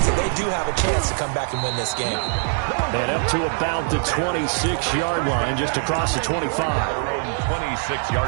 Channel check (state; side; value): silent; left; 64 dB below the other